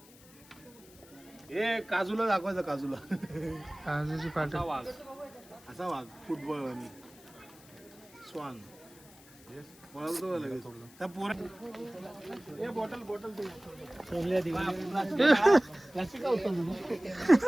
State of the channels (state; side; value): noise; left; hiss, 23 dB below the sound